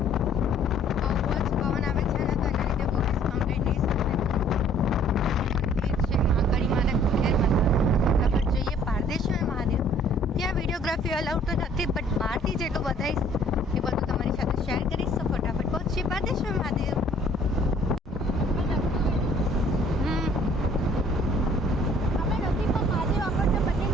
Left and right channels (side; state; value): both; normal; correlation 0.57